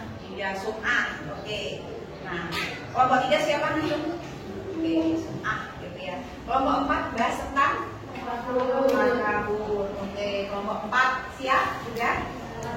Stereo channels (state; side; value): identical; both; correlation 1.00